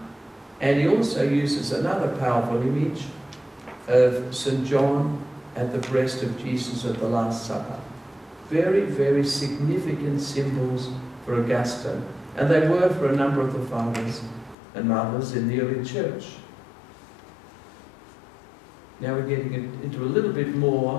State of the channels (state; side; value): drops out; right; at 14.6 s